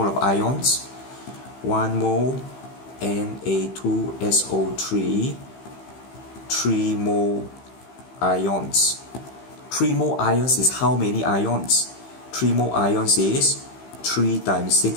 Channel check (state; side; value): late; right; 15 ms